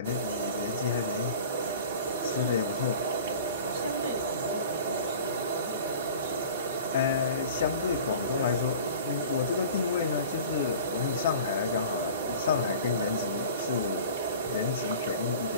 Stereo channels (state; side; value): inverted; both; correlation -0.41